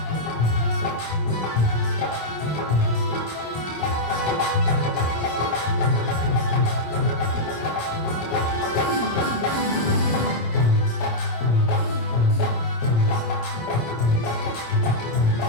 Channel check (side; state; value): right; late; 26 ms